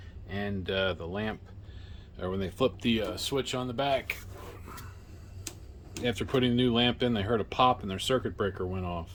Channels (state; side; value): identical; both; correlation 1.00